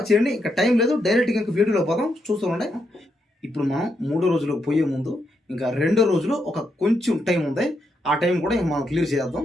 చేయండి. ఇంకా టైం లేదు, డైరెక్ట్గా ఇంకా వీడియోలో పోదాం, చూస్తూ ఉండే. ఇప్పుడు మనం 3వ రోజులోకి పోయే ముందు ఇంకా 2వ రోజులో ఒక కొంచెం టైం ఉంది. ఆ టైం కూడా ఇంకా మనం క్లియర్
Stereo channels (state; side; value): normal; both; correlation 0.81